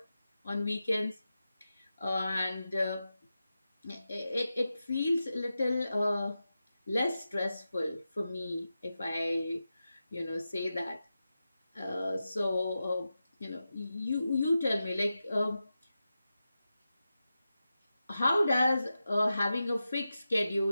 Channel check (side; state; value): both; inverted; correlation -0.91